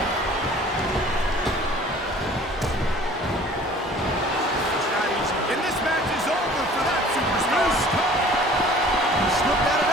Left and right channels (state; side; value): normal; both; correlation 0.49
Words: It's not easy. And this match is over for that superstar. He slipped out of